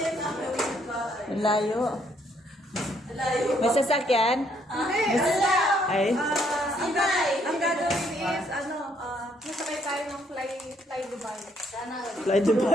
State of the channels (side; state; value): both; normal; correlation 0.69